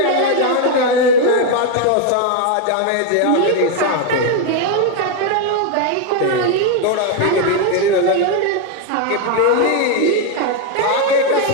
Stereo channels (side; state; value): both; different; correlation 0.01